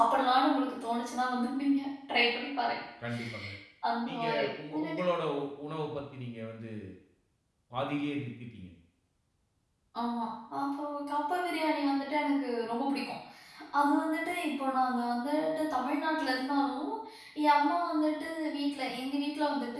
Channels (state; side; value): identical; both; correlation 1.00